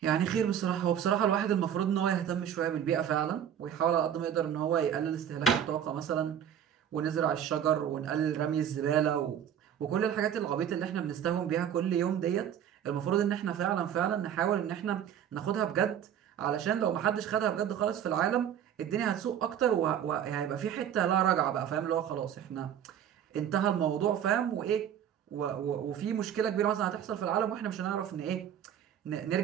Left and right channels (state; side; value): quieter; left; 9.4 dB